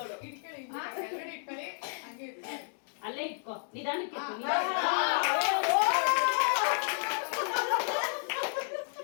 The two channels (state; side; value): silent; right; digital silence